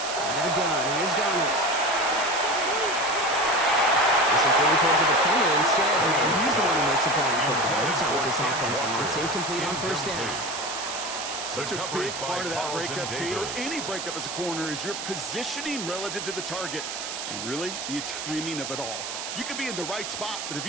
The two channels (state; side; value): noise; right; hiss, 6 dB below the sound